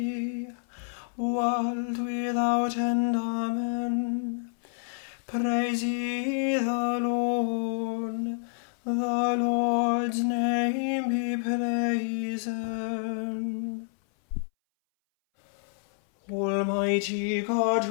world without end. Amen. Praise ye the Lord. The Lord's name be praised. Almighty God,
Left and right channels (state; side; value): silent; right; 59 dB below the other